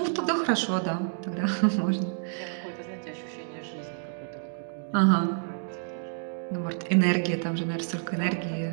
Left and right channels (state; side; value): silent; left; digital silence